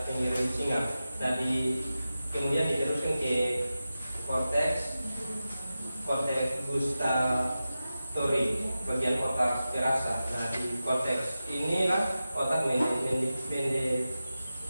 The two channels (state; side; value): inverted; both; correlation -0.93